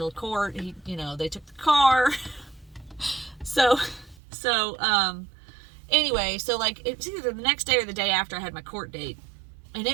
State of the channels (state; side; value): drops out; left; at 4.2 s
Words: court. They took the car. Anyway, so like, it was either the next day or the day after I had my court date. And